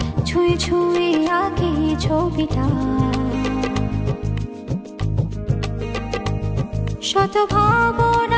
ছুঁয়ে ছুঁয়ে আঁকি ছবিটা। শত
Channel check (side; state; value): both; identical; correlation 1.00